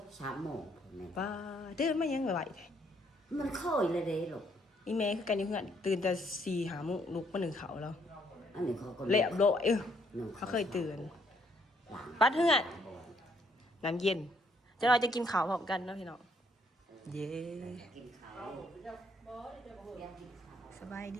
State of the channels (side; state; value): both; normal; correlation 0.69